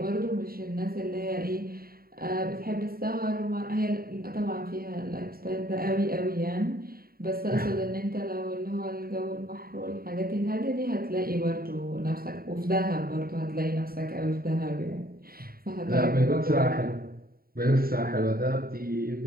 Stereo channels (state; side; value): late; left; 0.43 ms